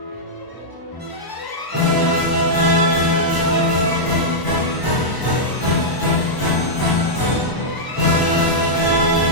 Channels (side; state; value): right; late; 1.0 ms